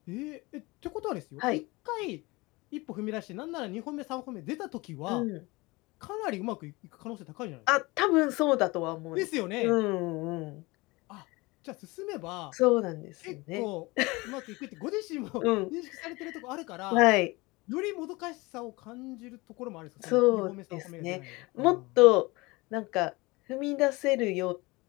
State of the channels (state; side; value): quieter; right; 23.4 dB